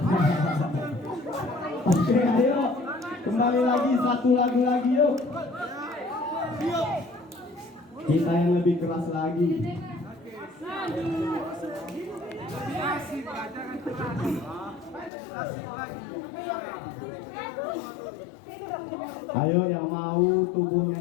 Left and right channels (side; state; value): right; drops out; at 15.1 s